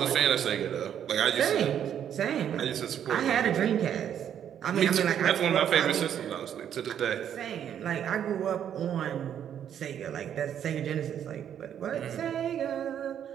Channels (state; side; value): quieter; left; 9.4 dB